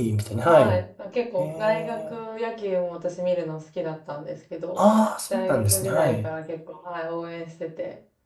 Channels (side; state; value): both; identical; correlation 1.00